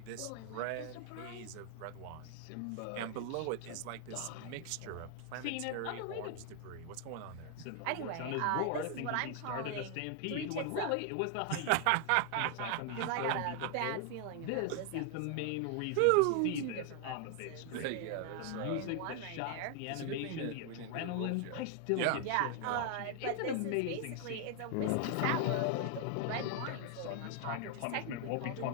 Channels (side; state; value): both; different; correlation 0.00